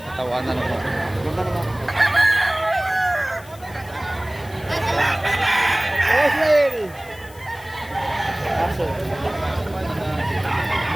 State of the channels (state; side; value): noise; left; hiss, 22 dB below the sound